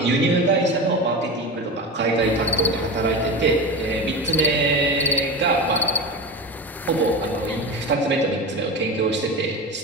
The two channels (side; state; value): both; normal; correlation 0.25